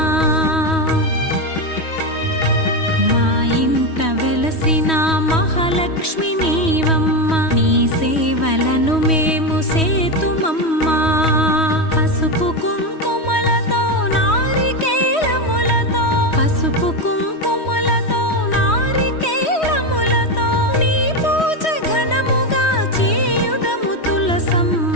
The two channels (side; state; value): right; late; 3.1 ms